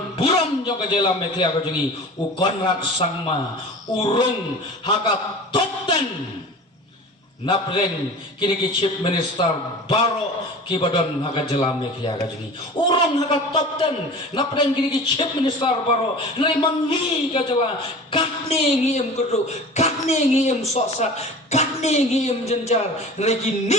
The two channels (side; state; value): both; normal; correlation 0.38